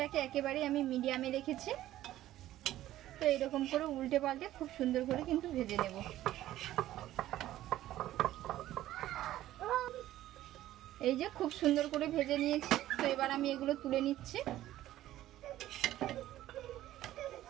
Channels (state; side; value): quieter; left; 14.0 dB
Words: একেবারে আমি মিডিয়ামে রেখেছি। তো এরকম করে উল্টে পাল্টে খুব সুন্দর করে কিন্তু ভেজে নেব। এই যে খুব সুন্দর করে ভেজে নিয়েছি। তো এবার আমি এগুলো তুলে নিচ্ছি।